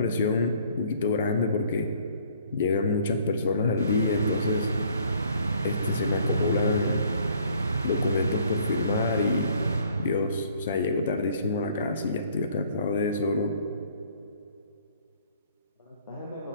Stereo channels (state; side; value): inverted; both; correlation -0.60